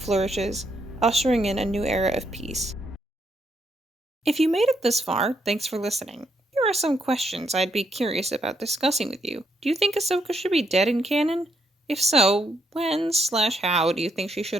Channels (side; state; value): both; normal; correlation 0.76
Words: ushering in a new era of peace. If you made it this far, thanks for listening. Here are some questions I'd be curious about discussing with you. Do you think Ahsoka should be dead in canon? If so, when/how do you think she should